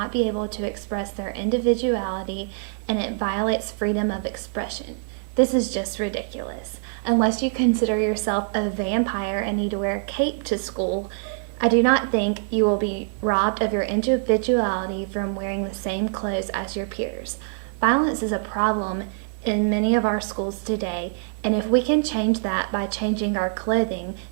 be able to express their individuality and it violates freedom of expression. This is just ridiculous. Unless you consider yourself a vampire and need to wear a cape to school, I do not think you will be robbed of your individuality from wearing the same clothes as your peers. Violence is a problem in many of our schools today, and if we can change that by changing our clothing,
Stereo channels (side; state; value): left; silent; 62 dB below the other